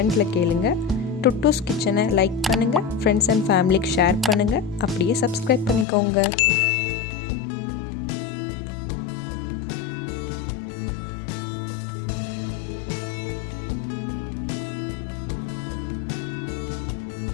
கேளுங்கள். டுட்டூஸ் கிச்சனை லைக் பண்ணுங்கள், ஃப்ரெண்ட்ஸ் அண்ட் ஃபேமிலிக்கு ஷேர் பண்ணுங்கள், அப்படியே சப்ஸ்கிரைப் பண்ணிக்கோங்க.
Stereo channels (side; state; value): right; drops out; at 5.9 s